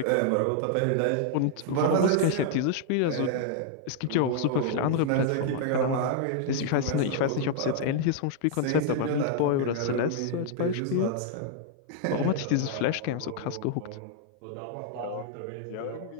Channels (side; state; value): both; different; correlation -0.01